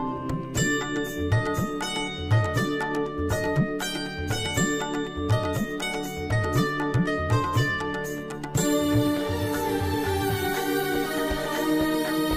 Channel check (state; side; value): identical; both; correlation 1.00